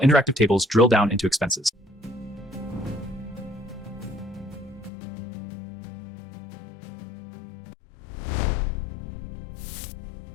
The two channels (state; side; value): drops out; right; at 4.9 s